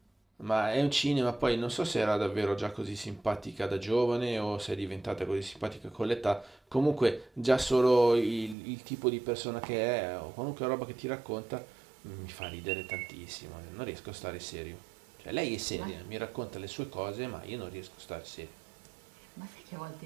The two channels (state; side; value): drops out; left; at 8.6 s